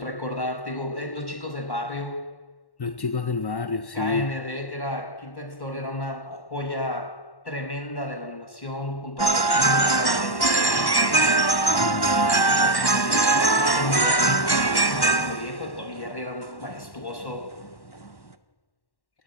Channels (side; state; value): right; late; 1.1 ms